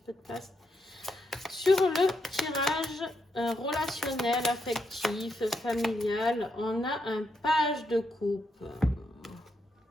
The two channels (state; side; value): normal; both; correlation 0.81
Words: de place. Sur le tirage relationnel, affectif, familial, on a un page de coupe.